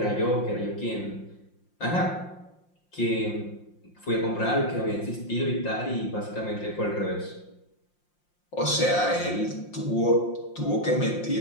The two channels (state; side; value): late; right; 5.7 ms